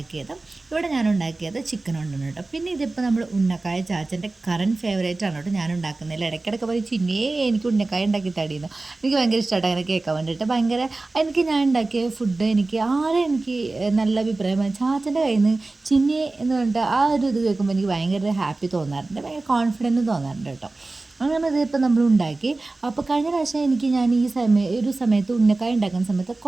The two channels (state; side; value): quieter; left; 3.2 dB